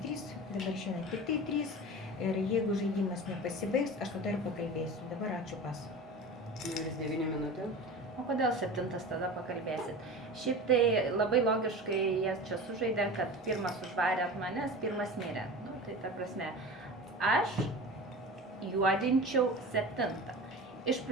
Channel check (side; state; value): both; normal; correlation 0.33